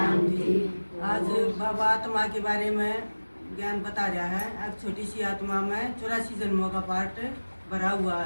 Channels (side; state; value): both; inverted; correlation -1.00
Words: आज बाबा आत्मा के बारे में ज्ञान बता रहा है। अब छोटी सी आत्मा में 84 जन्मों का पाठ भरा हुआ